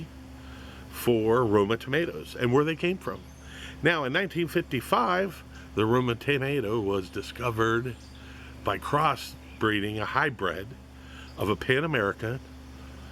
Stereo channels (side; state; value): both; identical; correlation 1.00